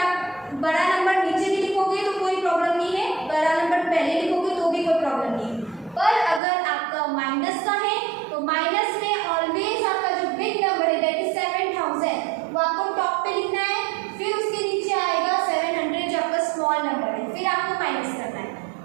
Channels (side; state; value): left; drops out; at 6.4 s